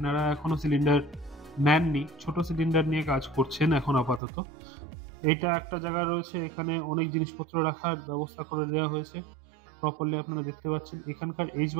এখনো সিলিন্ডার নেননি, ছোট সিলিন্ডার নিয়ে কাজ করছেন এখন আপাতত। এইটা একটা জায়গা রয়েছে, এখানে অনেক জিনিসপত্র রাখার ব্যবস্থা করে দেওয়া হয়েছে প্রপারলি, আপনারা দেখতে পাচ্ছেন। এখানকার এজ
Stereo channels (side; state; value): left; drops out; at 4.2 s